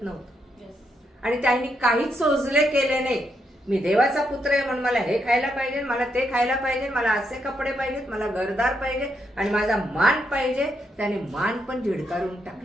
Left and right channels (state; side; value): normal; both; correlation 0.79